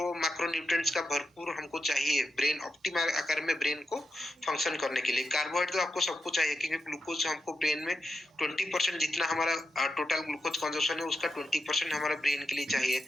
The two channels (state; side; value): normal; both; correlation 0.87